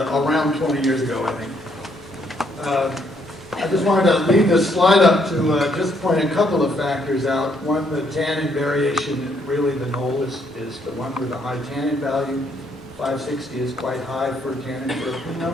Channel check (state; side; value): normal; both; correlation 0.70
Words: around 20 years ago, I think. I just wanted to leave this slide up to just point a couple of factors out. One, the tannin variation, really the knoll is the one with the high tannin value. 560 is quite high for tannin for a